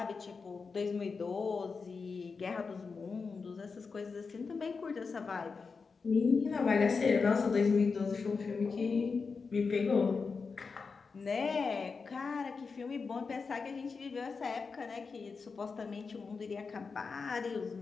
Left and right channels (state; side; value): quieter; right; 4.9 dB